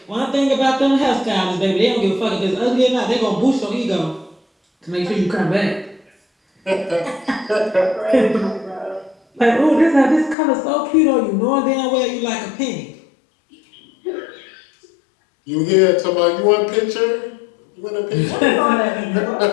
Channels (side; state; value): right; drops out; at 10.4 s